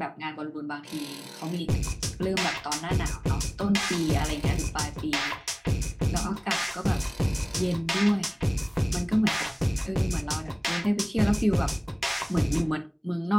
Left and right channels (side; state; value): both; identical; correlation 1.00